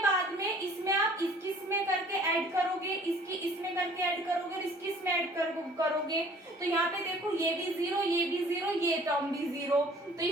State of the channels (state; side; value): normal; both; correlation 0.53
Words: में इसमें आप इसकी इसमें करके ऐड करोगे, इसकी इसमें करके ऐड करोगे, इसकी इसमें ऐड करोगे, तो यहाँ पे देखो ये भी 0, ये भी 0, ये टर्म भी 0, तो